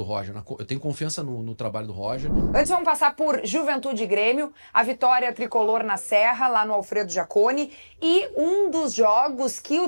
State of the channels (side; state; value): both; inverted; correlation -1.00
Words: Roger, eu tenho confiança no trabalho do Roger. Antes vamos passar por Juventude e Grêmio, a vitória tricolor na Serra, lá no Alfredo Jaconi, e um dos jogos que